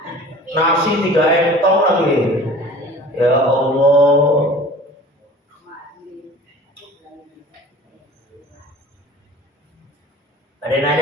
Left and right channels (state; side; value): normal; both; correlation 0.43